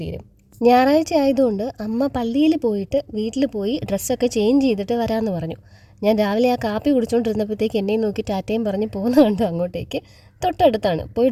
തീരും. ഞായറാഴ്ച ആയതുകൊണ്ട് അമ്മ പള്ളിയിൽ പോയിട്ട് വീട്ടിൽ പോയി ഡ്രസ്സൊക്കെ ചേഞ്ച് ചെയ്തിട്ട് വരാമെന്ന് പറഞ്ഞു. ഞാൻ രാവിലെ ആ കാപ്പി കുടിച്ചുകൊണ്ടിരുന്നപ്പോഴത്തേക്ക് എന്നെയും നോക്കി ടാറ്റയും പറഞ്ഞ് പോകുന്ന കണ്ടു അങ്ങോട്ടേക്ക്. തൊട്ടടുത്താണ്, പോയി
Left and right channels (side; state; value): both; identical; correlation 1.00